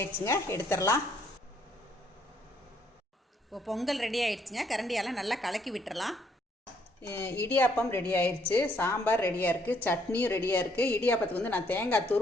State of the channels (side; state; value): both; normal; correlation 0.68